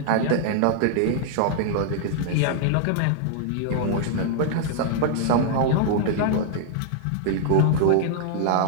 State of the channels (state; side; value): different; both; correlation -0.01